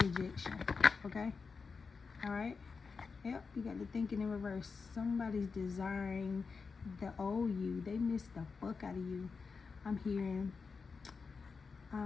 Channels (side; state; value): right; quieter; 4.9 dB